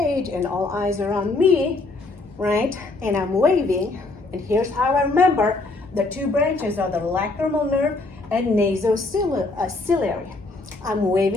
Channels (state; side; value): quieter; right; 3.3 dB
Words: and all eyes are on me, right? And I'm waving, and here's how I remember the 2 branches are the lacrimal nerve and nasociliary. I'm